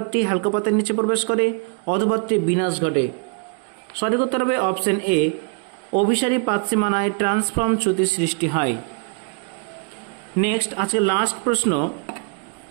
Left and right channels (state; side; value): quieter; left; 37.1 dB